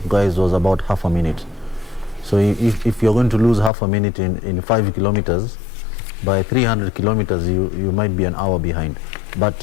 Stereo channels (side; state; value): right; drops out; at 3.7 s